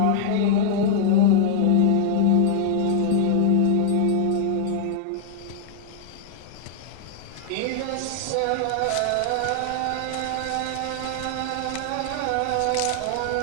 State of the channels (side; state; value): both; different; correlation 0.00